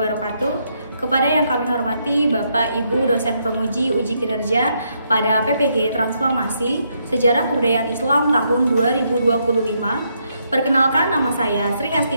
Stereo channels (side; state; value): both; inverted; correlation -0.77